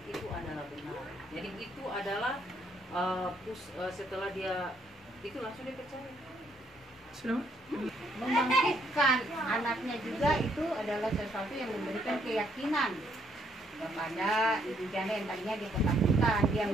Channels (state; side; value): normal; both; correlation 0.70